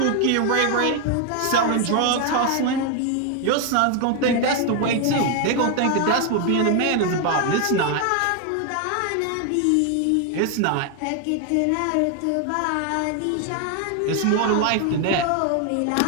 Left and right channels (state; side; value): different; both; correlation 0.01